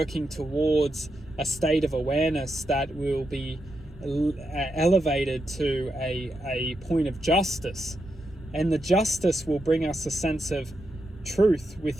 towards a state of awareness that will be elevated to a point of justice. And the justice will bring us a sense of truth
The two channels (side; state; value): both; normal; correlation 0.85